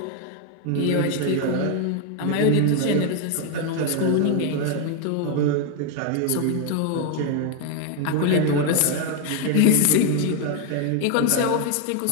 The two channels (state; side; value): different; both; correlation 0.01